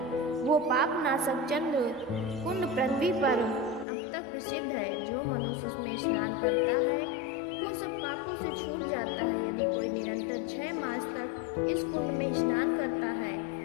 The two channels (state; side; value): drops out; right; at 3.9 s